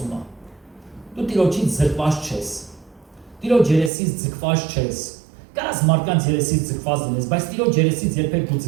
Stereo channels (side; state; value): left; drops out; at 3.9 s